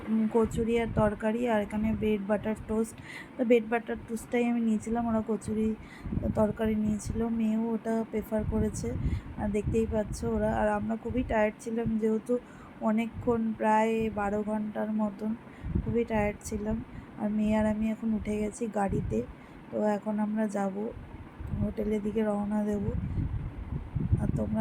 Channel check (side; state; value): both; identical; correlation 1.00